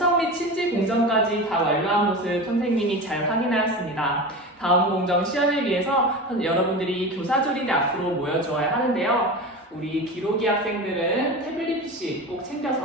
및 침지 공정까지 다 완료한 것을 선생님이 잘 확인하였습니다. 다음 공정 시연을 위해서 여러분들이 교사 조립에 앞으로 모여주어야 하는데요. 우리 기록이 학생들은 태블릿 PC 꼭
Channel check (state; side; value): normal; both; correlation 0.28